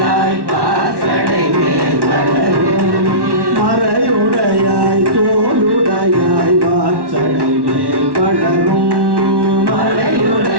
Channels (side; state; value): left; late; 1.1 ms